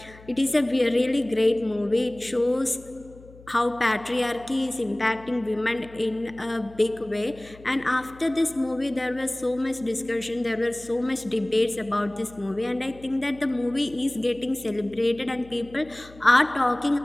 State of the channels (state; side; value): noise; left; hum, 22 dB below the sound